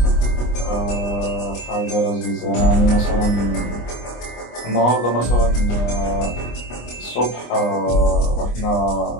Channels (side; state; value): right; late; 25 ms